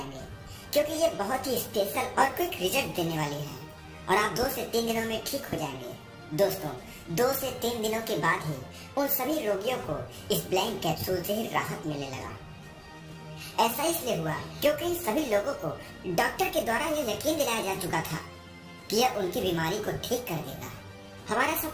क्योंकि ये बहुत ही स्पेशल और क्विक रिजल्ट देने वाली है और आप 2 से 3 दिनों में ठीक हो जाएंगे। दोस्तों, 2 से 3 दिनों के बाद ही उन सभी रोगियों को इस ब्लैक कैप्सूल से ही राहत मिलने लगा। ऐसा इसलिए हुआ क्योंकि इन सभी लोगों को डॉक्टर के द्वारा यह यकीन दिलाया जा चुका था कि यह उनकी बीमारी को ठीक कर देगा। हमारा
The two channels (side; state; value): both; identical; correlation 1.00